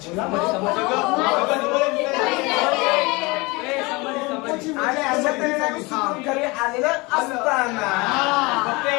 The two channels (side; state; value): right; quieter; 24.9 dB